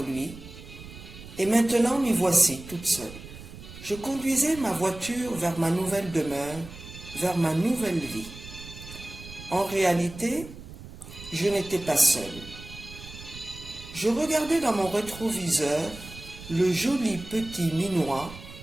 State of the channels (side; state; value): right; noise; rumble, 15 dB below the sound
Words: lui, et maintenant m'y voici toute seule. Je conduisais ma voiture vers ma nouvelle demeure, vers ma nouvelle vie. En réalité, je n'étais pas seule. Je regardais dans mon rétroviseur le joli petit minois